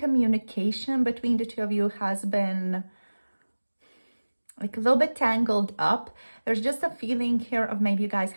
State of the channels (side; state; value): both; inverted; correlation -1.00